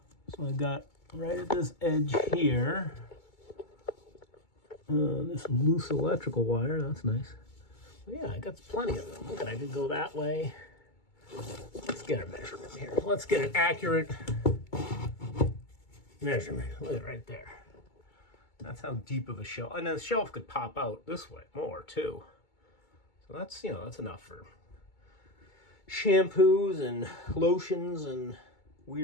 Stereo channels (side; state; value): right; late; 2.2 ms